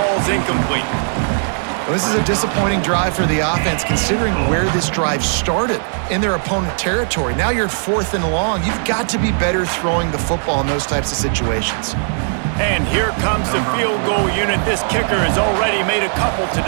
incomplete. Well, this is a disappointing drive for the offense, considering where this drive started in their opponent territory. Now you're 4th and long. You've got to be better throwing the football in those types of situations. And here comes the field goal unit. This kicker has already made a couple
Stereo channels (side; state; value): left; silent; 67 dB below the other